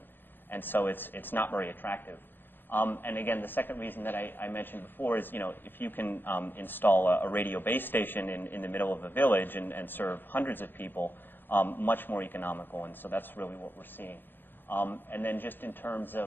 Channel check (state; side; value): late; right; 0.097 ms